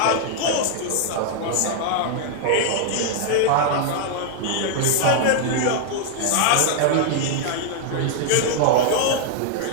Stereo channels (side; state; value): both; different; correlation 0.00